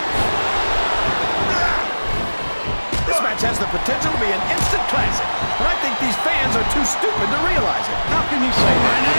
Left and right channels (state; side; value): inverted; both; correlation -1.00